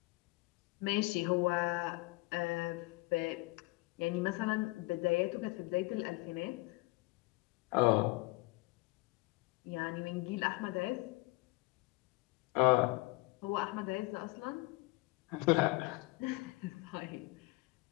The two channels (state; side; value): quieter; right; 23.5 dB